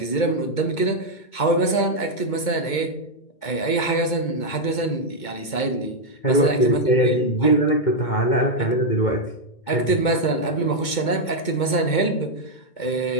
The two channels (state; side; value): late; right; 2.2 ms